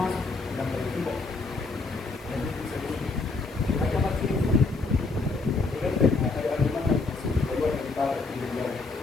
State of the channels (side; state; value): right; quieter; 3.8 dB